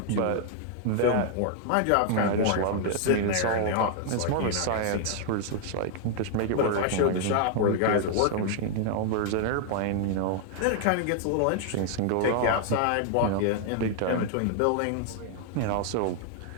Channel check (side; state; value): both; different; correlation 0.00